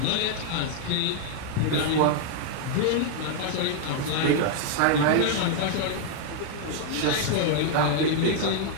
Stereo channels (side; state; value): both; different; correlation 0.00